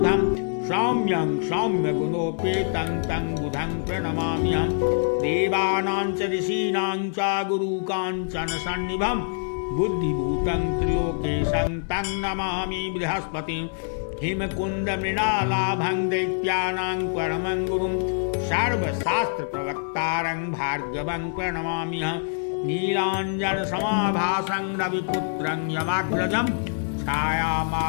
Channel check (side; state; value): right; silent; digital silence